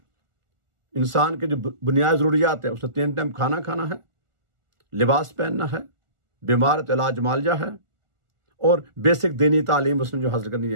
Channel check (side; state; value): left; late; 1.4 ms